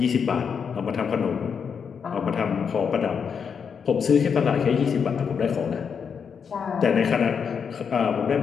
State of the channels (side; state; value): right; quieter; 6.6 dB